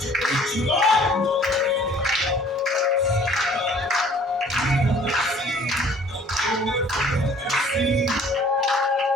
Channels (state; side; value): normal; both; correlation 0.54